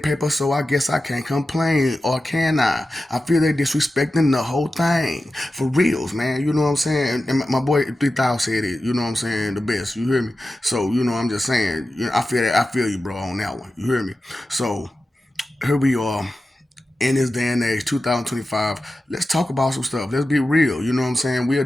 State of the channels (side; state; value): both; normal; correlation 0.93